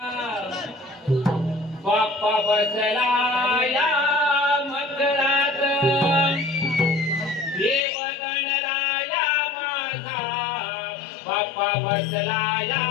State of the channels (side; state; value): right; drops out; at 7.9 s